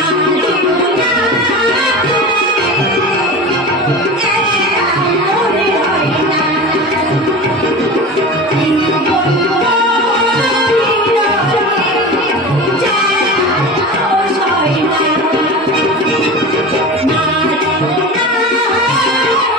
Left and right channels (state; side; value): normal; both; correlation 0.31